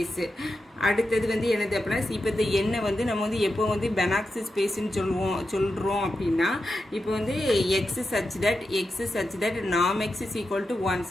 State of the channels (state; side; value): normal; both; correlation 0.89